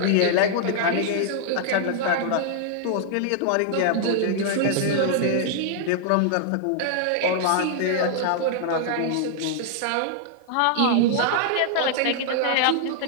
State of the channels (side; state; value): both; different; correlation -0.01